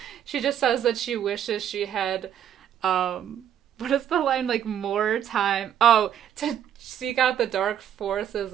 just says that she wishes she had, what is the line? Like, more time. Oh, to seek out the dark forces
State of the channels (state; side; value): quieter; left; 9.7 dB